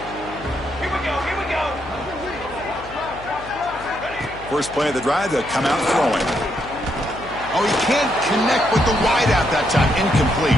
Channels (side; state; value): left; noise; hum, 17 dB below the sound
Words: Here we go. First play of the drive, they'll come out throwing. Oh, he can't connect with the wideout that time. Incomplete.